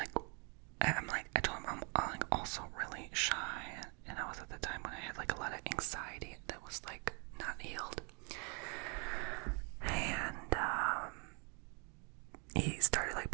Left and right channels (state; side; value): quieter; left; 34.7 dB